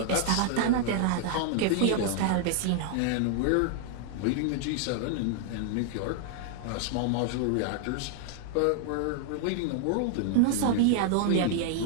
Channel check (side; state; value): both; different; correlation 0.00